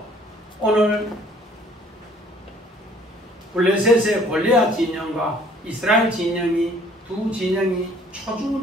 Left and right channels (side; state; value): both; normal; correlation 0.57